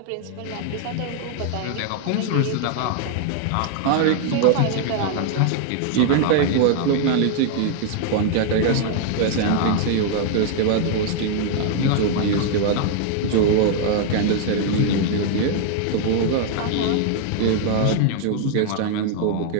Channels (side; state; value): both; different; correlation 0.00